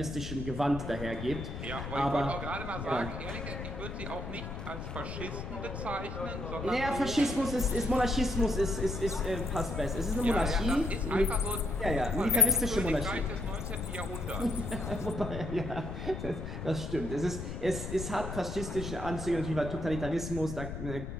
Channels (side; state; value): left; noise; rumble, 7 dB below the sound